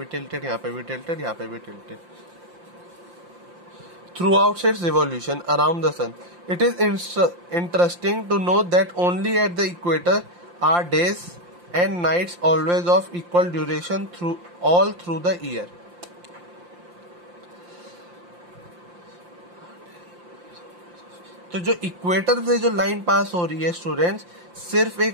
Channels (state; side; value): late; left; 5.7 ms